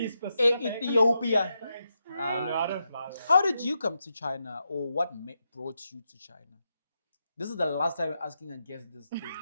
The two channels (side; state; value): both; inverted; correlation -0.85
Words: specific. Ethiopia. No, I don't fly there. How did you come to China, or what brought you to China? This is the last time I'm asking a guest this thing. We're